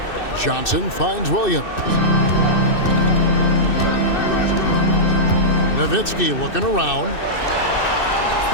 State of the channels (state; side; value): late; right; 2.6 ms